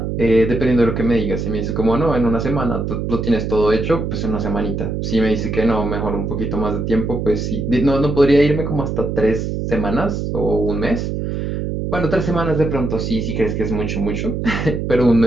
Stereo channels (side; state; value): right; noise; hum, 3 dB below the sound